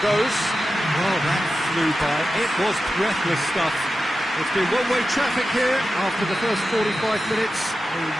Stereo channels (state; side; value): normal; both; correlation 0.92